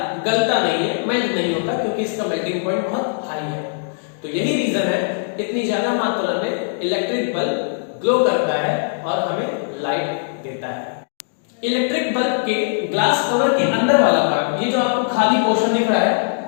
गलता नहीं है, मेल्ट नहीं होता, क्योंकि इसका मेल्टिंग पॉइंट बहुत हाई है। तो यही रीजन है इतनी ज्यादा मात्रा में इलेक्ट्रिक बल्ब ग्लो करता है और हमें लाइट देता है। इलेक्ट्रिक बल्ब के ग्लास कवर के अंदर वाला पार्ट, ये जो आपको खाली पोर्शन दिख रहा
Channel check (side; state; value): right; silent; digital silence